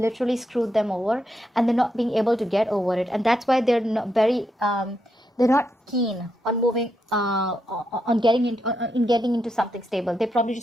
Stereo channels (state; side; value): normal; both; correlation 0.82